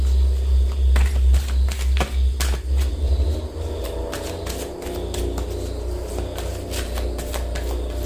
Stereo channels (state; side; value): identical; both; correlation 1.00